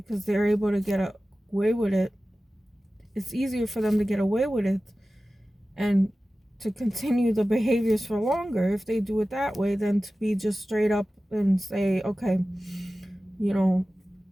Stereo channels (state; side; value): normal; both; correlation 0.96